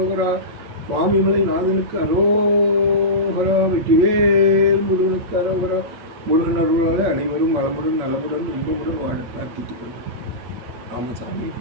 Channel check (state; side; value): late; left; 8.8 ms